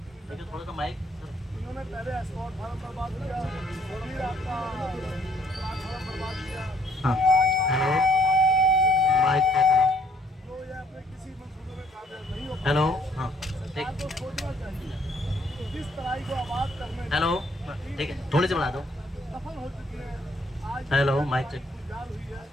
थोड़ा सा माइक। हाँ, हेलो, माइक। हेलो, हाँ, ठीक। हेलो, ठीक है, थोड़ी सी बढ़ा दो। Hello, mic check.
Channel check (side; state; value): both; normal; correlation 0.65